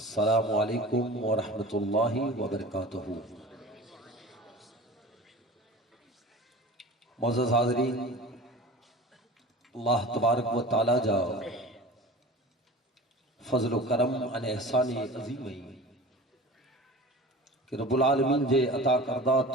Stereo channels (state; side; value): normal; both; correlation 0.38